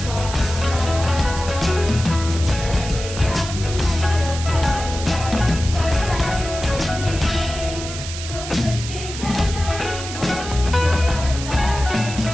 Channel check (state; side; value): noise; right; hiss, 9 dB below the sound